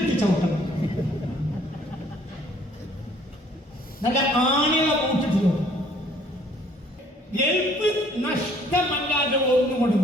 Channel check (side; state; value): both; normal; correlation 0.60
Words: ചവിട്ടണം. നല്ല ആണികള ബൂട്ടിട്ട് ഗൾഫ് നഷ്ടമല്ലാതെ ഒന്നുകൊണ്ട്